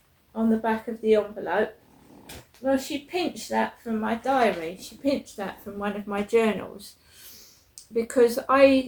on the back of the envelope. Well, she pinched that from my diary. She pinched that from one of my journals. Because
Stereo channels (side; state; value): both; identical; correlation 1.00